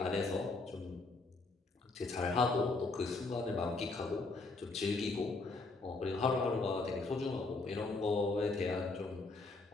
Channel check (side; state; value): right; quieter; 3.5 dB